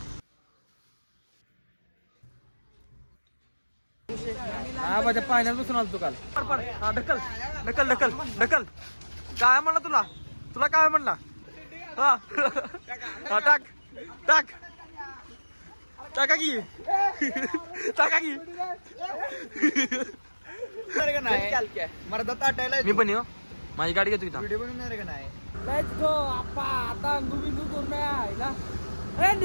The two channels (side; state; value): both; inverted; correlation -1.00